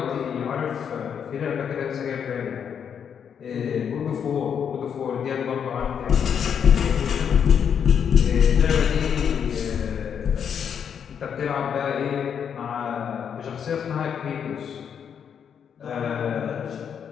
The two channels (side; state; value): right; quieter; 7.8 dB